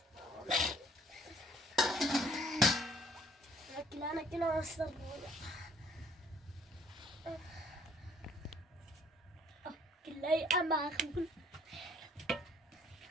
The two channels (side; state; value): both; normal; correlation 0.60